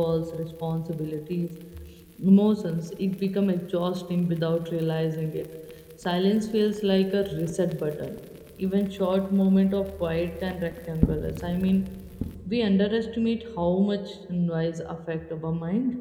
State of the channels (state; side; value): identical; both; correlation 1.00